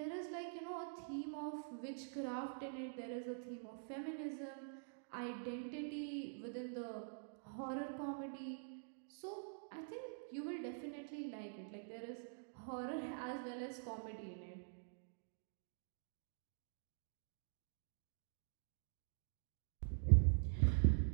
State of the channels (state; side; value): silent; left; digital silence